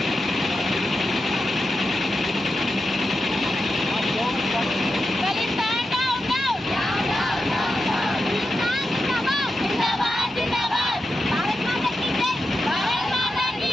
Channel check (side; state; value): both; normal; correlation 0.90